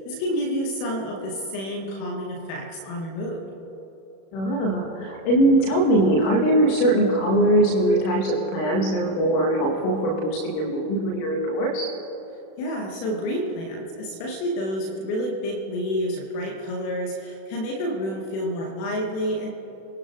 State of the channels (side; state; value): right; late; 36 ms